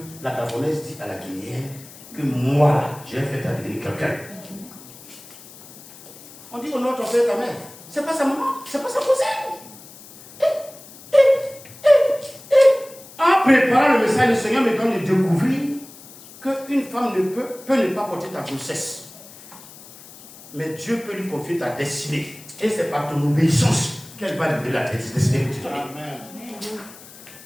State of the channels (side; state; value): left; noise; hiss, 19 dB below the sound